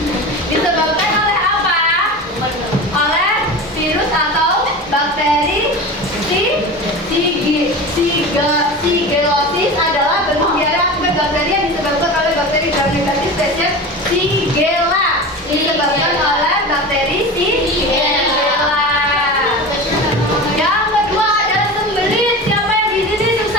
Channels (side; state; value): both; normal; correlation 0.30